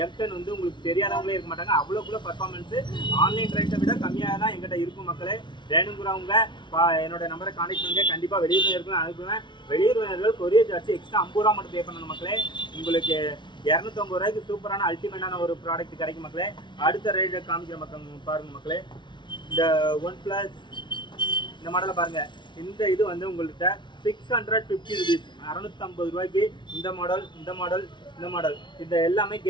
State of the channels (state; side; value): late; right; 0.23 ms